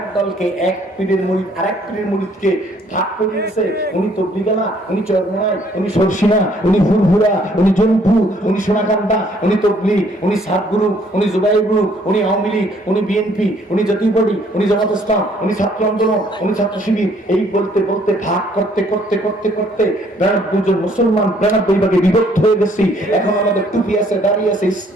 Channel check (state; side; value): normal; both; correlation 0.63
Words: দলকে, এক পীরের মুরিদ আরেক পীরের মুরিদকে ভাগ করে দিয়েছে। উনি তবলিগালা, উনি চরমনাই, উনি সরসিনা, উনি ফুরফুরা, উনি জনপুর, উনি সোনাকান্দা, উনি তবলিগ, উনি সাতগুরু, উনি জুবাইর গ্রুপ, উনি আওয়ামী লীগ, উনি বিএনপি, উনি জাতীয় পার্টি, উনি জামাত ইসলাম, উনি ছাত্র আন্দোলন, উনি ছাত্র শিবির। এই বলতে বলতে ভাগ করতে করতে করতে করতে 92 জন মুসলমান 92 ভাগে বিভক্ত হয়ে গেছি। এখন আমাদের টুপি আছে, দাড়ি আছে,